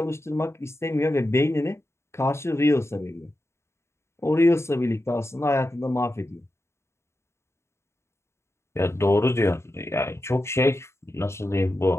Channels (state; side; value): late; right; 0.13 ms